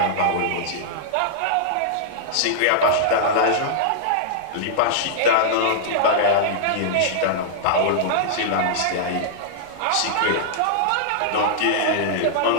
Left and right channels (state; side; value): different; both; correlation -0.02